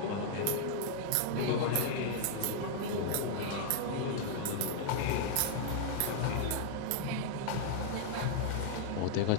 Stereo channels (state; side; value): different; both; correlation -0.01